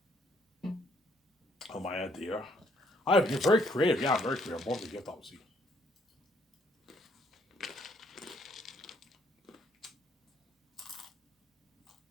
Oh, my idea. You're very creative. Yeah, I'm very creative. I'm born with a gift, obviously.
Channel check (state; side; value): normal; both; correlation 0.68